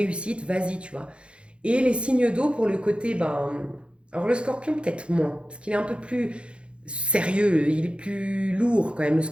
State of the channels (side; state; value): left; late; 0.058 ms